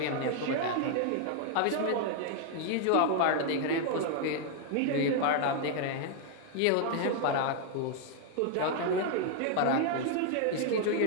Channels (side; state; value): both; different; correlation 0.00